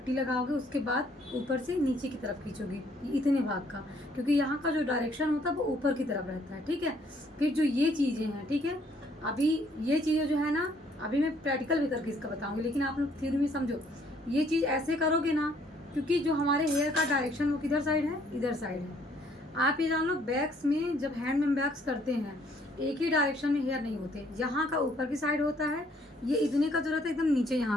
लगाओगे, उसके बाद ऊपर से नीचे की तरफ खींचोगे इतने भाग का, क्योंकि यहाँ का जो डायरेक्शन होता है वो ऊपर की तरफ रहता है, ठीक है। फिर जो ये चीज़ें हैं, ठीक है, अभी ये चीज़ें जो है ना, अभी मैं प्रैक्टिकल भी करके इसका बताऊँगी, लेकिन आप लोग थ्योरी में समझो। ये चीज़ ऐसे करोगे ना, क्योंकि जो हमारे हेयर का डायरेक्शन वो किधर साइड है, इधर साइड है। आप ये जान लो, बैक्स में जब हैंड में बैक्स करते हैं एक ही डायरेक्शन में हेयर नहीं होते, यहाँ का ऊपर की साइड होता है, ये इतने का जो रहता है एकदम नीचे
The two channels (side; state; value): both; normal; correlation 0.64